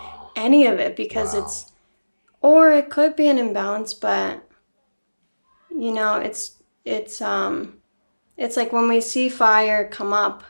any of it, because it's, or it could be an imbalance, but it's like when we see fire come up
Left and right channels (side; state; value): both; inverted; correlation -1.00